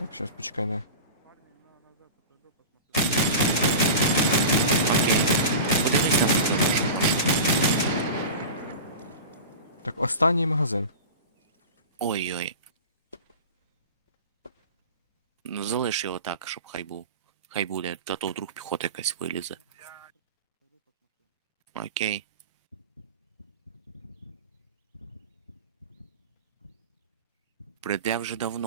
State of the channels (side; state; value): both; inverted; correlation -0.31